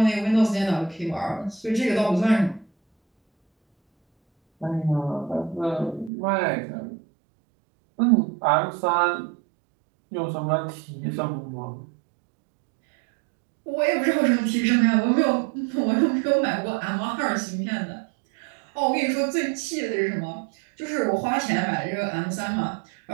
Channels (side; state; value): left; drops out; at 6.1 s